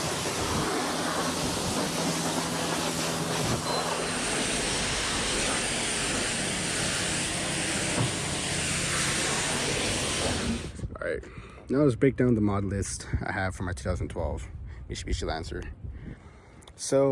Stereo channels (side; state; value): both; identical; correlation 1.00